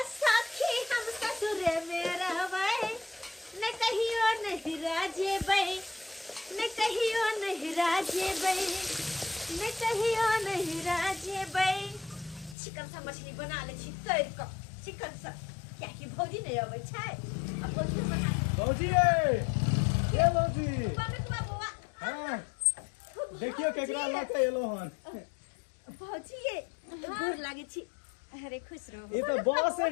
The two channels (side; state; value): right; drops out; at 12.6 s